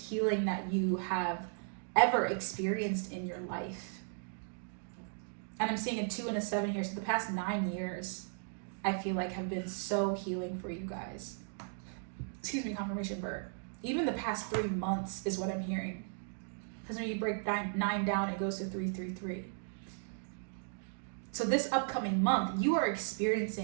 that you have ever experienced in your life. And I'm seeing a 2 and a 7 here. So the past 9 years, I feel like have been so healing for you guys. Excuse me, confirmation bird. Even the past 3 months is what I'm hearing. Because when you break 9 down, it goes to 3, 3, 3. So this upcoming month, you are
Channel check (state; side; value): silent; left; digital silence